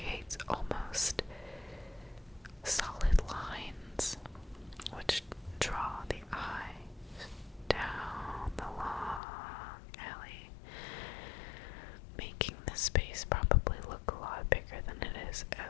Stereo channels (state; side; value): drops out; right; at 9.2 s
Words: almost solid lines which draw the eye down the long alley, making the space probably look a lot bigger than it is